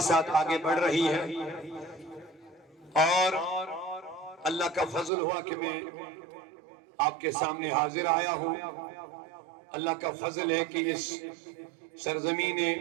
ساتھ آگے بڑھ رہی ہے، اور اللہ کا فضل ہوا کہ میں آپ کے سامنے حاضر آیا ہوں۔ اللہ کا فضل ہے کہ اس سرزمین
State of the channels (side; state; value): left; drops out; at 5.1 s